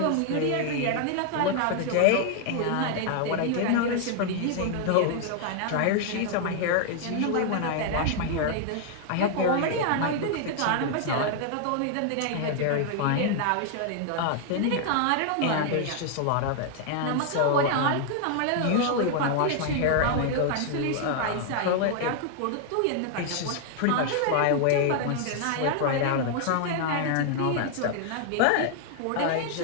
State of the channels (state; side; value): different; both; correlation 0.00